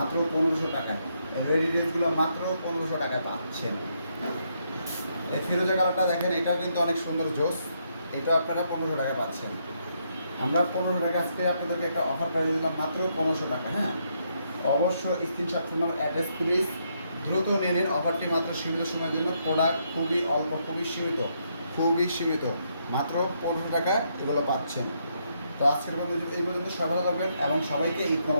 1500 টাকায়। রেডি ড্রেসগুলো মাত্র 1500 টাকায় পাচ্ছেন। এই ফিরোজা কালারটা দেখেন, এটাও কিন্তু অনেক সুন্দর জোস, এটা আপনারা 1500 টাকায় পাচ্ছেন। আমরা 1500 টাকা আজকে আপনাদেরকে একটা অফার প্রাইস দিলাম মাত্র 1500 টাকা, হ্যাঁ। অবশ্য screenshot, phone number, address, please দ্রুত নিয়ে নিন। অফারটি মাত্র সীমিত সময়ের জন্য, প্রোডাক্ট খুবই অল্প, খুবই সীমিত, খুবই সীমিত, মাত্র 1500 টাকা এগুলো পাচ্ছেন। তো আজকের মধ্যে এই পর্যন্ত সবাই ভালো থাকবেন, এবং সবাইকে ঈদ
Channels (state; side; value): inverted; both; correlation -0.76